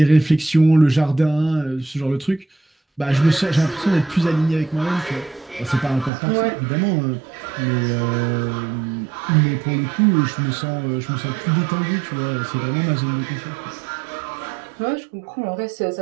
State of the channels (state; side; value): drops out; left; at 6.1 s